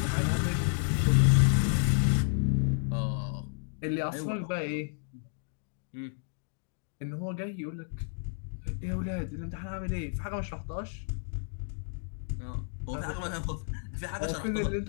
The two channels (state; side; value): silent; right; 57 dB below the other